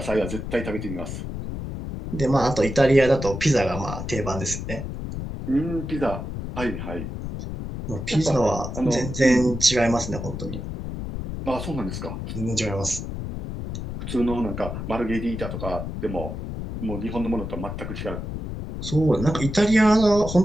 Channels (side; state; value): left; noise; rumble, 6 dB below the sound